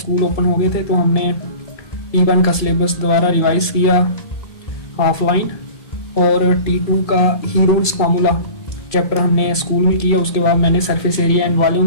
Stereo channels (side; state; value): right; late; 2.3 ms